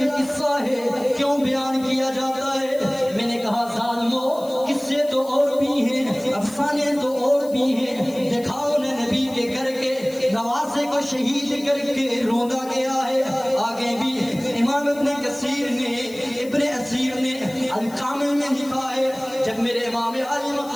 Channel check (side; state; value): left; noise; hiss, 20 dB below the sound